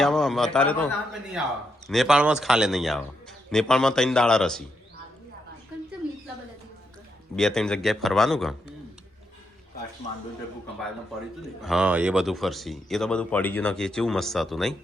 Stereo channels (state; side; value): normal; both; correlation 0.81